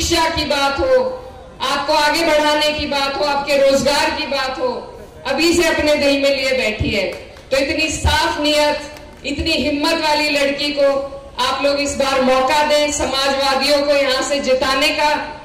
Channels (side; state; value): both; identical; correlation 1.00